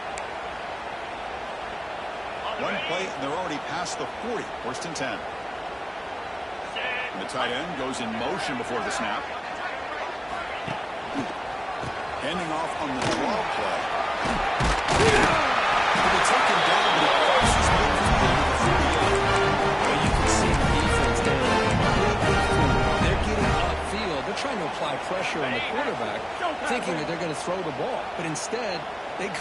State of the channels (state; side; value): identical; both; correlation 1.00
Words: One play, and they're already past the 40. First and 10. And the tight end goes in motion before the snap. Handing off on the draw play. He'll be taken down, but he crosses midfield to the 38. Well, you can see the defense there. They're getting upfield. They're trying to apply pressure on the quarterback, thinking that they're going to throw the ball. But instead, they